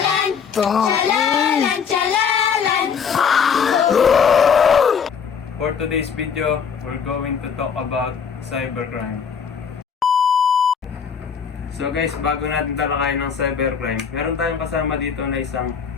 chalalan, chalalan. For today's video, we're going to talk about cybercrime. So guys, bago natin talakayin ng cybercrime, meron tayong kasama dito na isang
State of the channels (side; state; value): right; quieter; 6.8 dB